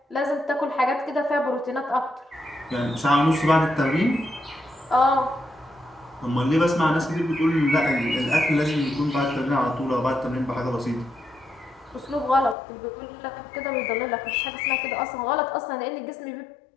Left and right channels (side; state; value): right; drops out; at 12.6 s